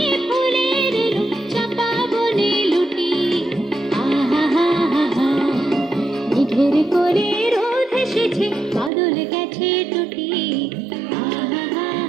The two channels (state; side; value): drops out; left; at 8.9 s